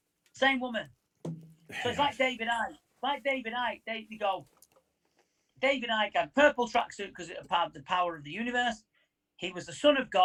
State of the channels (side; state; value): both; identical; correlation 1.00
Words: Same woman. So it's like David Icke. They go. David Icke had purple tracksuit because it had the power of the universe. He was the son of